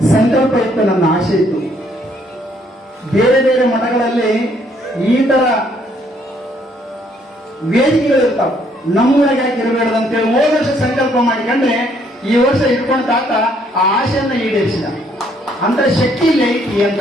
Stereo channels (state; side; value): normal; both; correlation 0.67